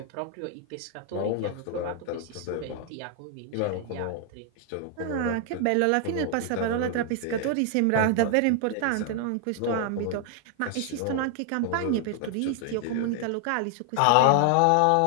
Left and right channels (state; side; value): different; both; correlation 0.00